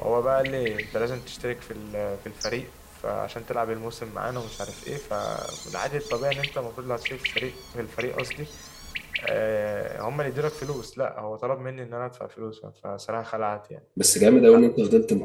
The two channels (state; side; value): identical; both; correlation 1.00